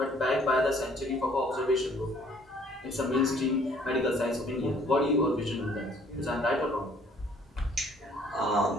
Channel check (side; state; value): both; normal; correlation 0.59